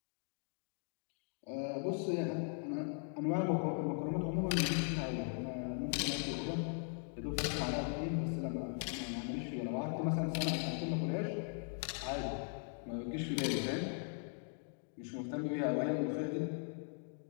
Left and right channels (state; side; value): silent; right; 52 dB below the other